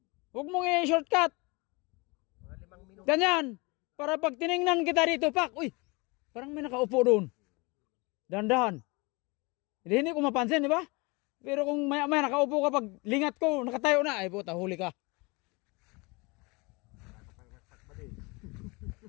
Huwag mong i-shortcut. Mga 5 minuto. Ganyan. Para pag tiningnan kita dito, pak, uy, parang may nakaupo doon. Dahan-dahan. Hindi ko mapansin, di ba? Pero kung maya-maya nakaupo ka, pag lingat ko, nakatayo na, ay puta, huli ka.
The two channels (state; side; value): quieter; right; 26.8 dB